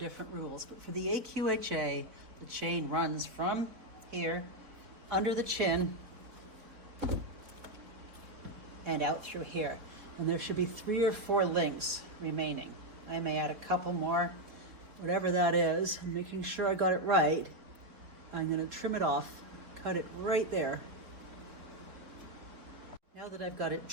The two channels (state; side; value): late; left; 4.1 ms